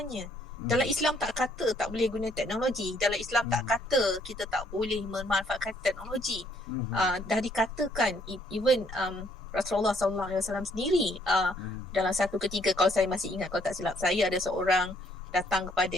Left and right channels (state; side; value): normal; both; correlation 0.66